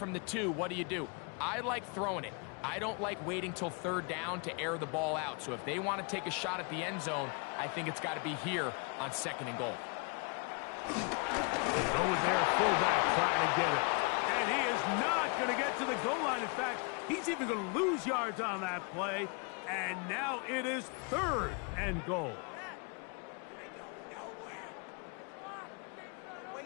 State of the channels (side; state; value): right; quieter; 34.1 dB